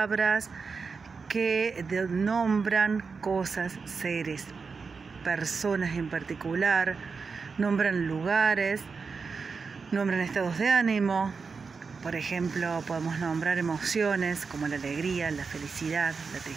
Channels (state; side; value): quieter; left; 5.0 dB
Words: que nombran cosas, seres, personas en particular, nombran lugares, nombran estados de ánimo. Por ejemplo, podemos nombrar emociones como la alegría, la felicidad, la